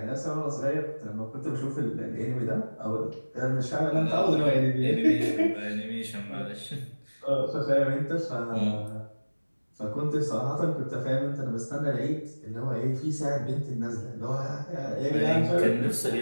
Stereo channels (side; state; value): both; inverted; correlation -1.00